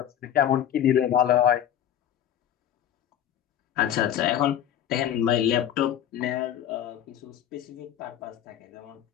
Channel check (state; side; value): quieter; right; 10.5 dB